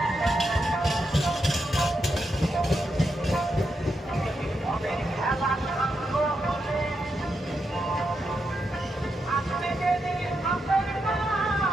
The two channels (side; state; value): both; normal; correlation 0.84